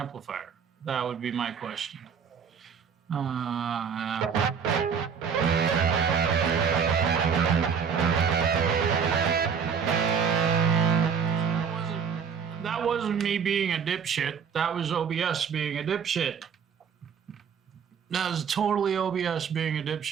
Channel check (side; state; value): left; quieter; 6.7 dB